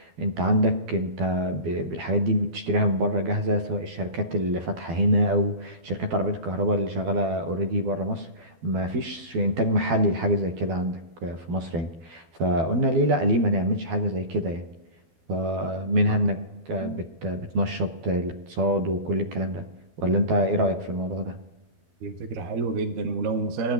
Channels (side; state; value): left; late; 12 ms